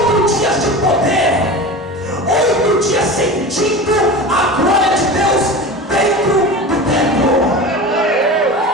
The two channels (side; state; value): both; normal; correlation 0.31